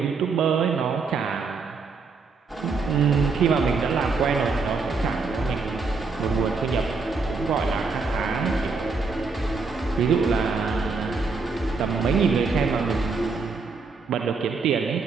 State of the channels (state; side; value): quieter; left; 4.5 dB